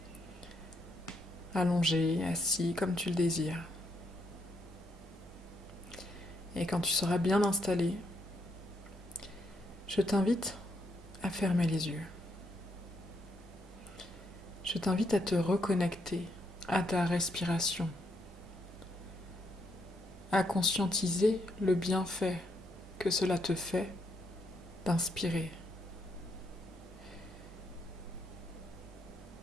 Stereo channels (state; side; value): normal; both; correlation 0.77